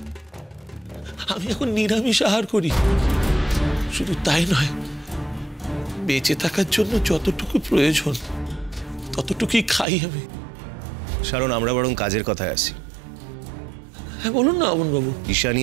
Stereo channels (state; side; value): drops out; left; at 9.9 s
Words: এখন নিরামিষ আহার করি। শুধু তাই নয়, বেঁচে থাকার জন্য যতটুকু প্রয়োজন ততটুকুই খাই আমি। কারণ আমরা বরং কাজের কথায় আছি। হ্যাঁ বলুন না অমন বাবু। ঈশানী